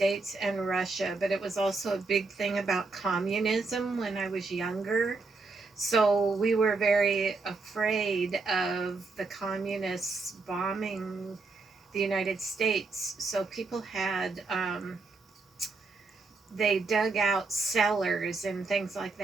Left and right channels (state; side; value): quieter; left; 3.9 dB